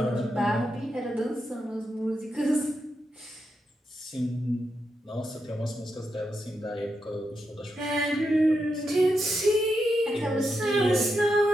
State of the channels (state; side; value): normal; both; correlation 0.85